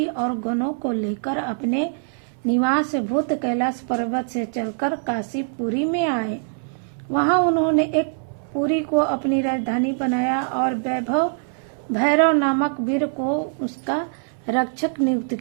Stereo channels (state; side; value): silent; left; 63 dB below the other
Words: और गणों को लेकर अपने निवास भूत कैलाश पर्वत से चलकर काशीपुरी में आए। वहां उन्होंने एक पुरी को अपनी राजधानी बनाया और भैरव नामक वीर को उसका रक्षक नियुक्त